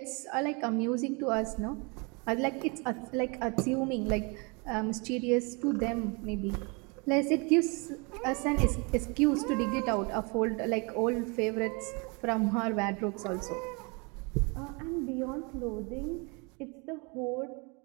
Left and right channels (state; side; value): quieter; left; 30.7 dB